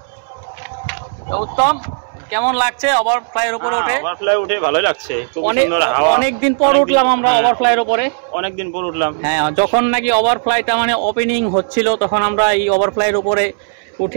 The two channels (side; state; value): left; silent; 67 dB below the other